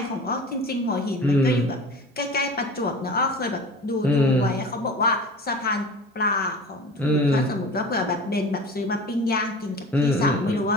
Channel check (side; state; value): both; normal; correlation 0.38